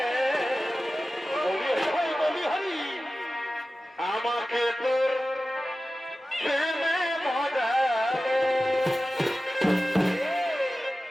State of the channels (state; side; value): normal; both; correlation 0.95